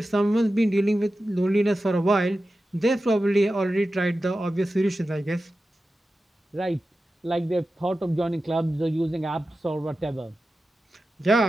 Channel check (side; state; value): both; normal; correlation 0.93